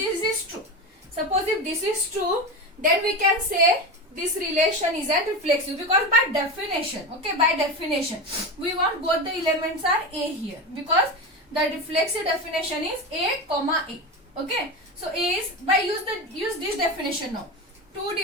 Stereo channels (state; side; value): normal; both; correlation 0.21